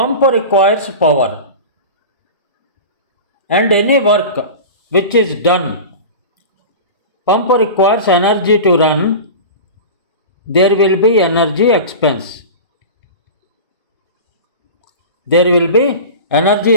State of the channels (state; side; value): inverted; both; correlation -0.31